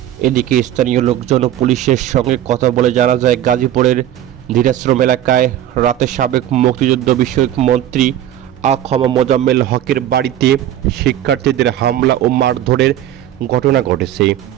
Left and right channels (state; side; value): quieter; left; 11.9 dB